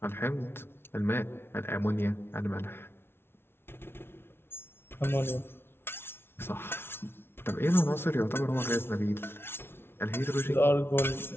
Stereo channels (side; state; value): right; late; 0.12 ms